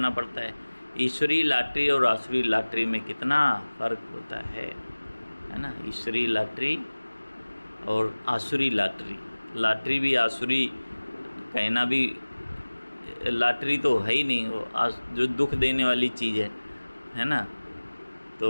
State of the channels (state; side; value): inverted; both; correlation -1.00